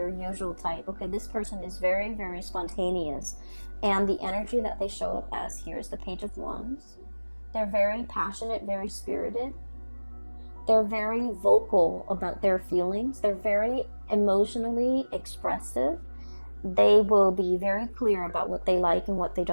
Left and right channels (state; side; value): inverted; both; correlation -1.00